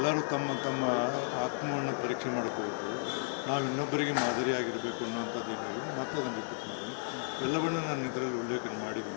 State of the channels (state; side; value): silent; right; digital silence